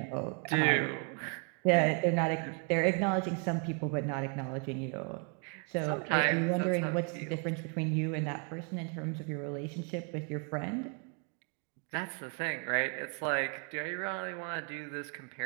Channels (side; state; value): left; quieter; 38.2 dB